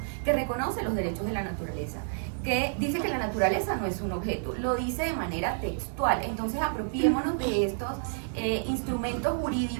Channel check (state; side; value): silent; left; digital silence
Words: que reconoce los derechos de la naturaleza, que dice que la naturaleza no es un objeto, lo dice de manera textual. Entonces apropiémonos de estos instrumentos